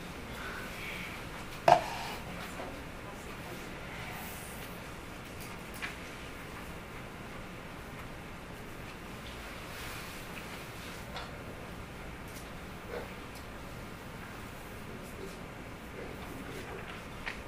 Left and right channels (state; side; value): identical; both; correlation 1.00